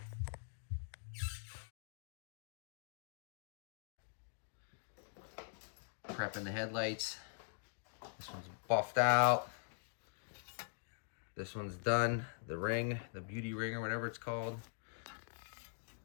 Prepping the headlights. This one's buffed out. This one's done. The ring, the beauty ring or whatever it's called.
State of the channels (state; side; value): silent; right; digital silence